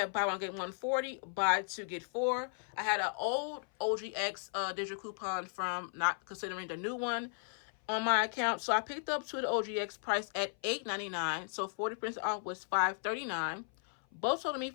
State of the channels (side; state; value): right; silent; 54 dB below the other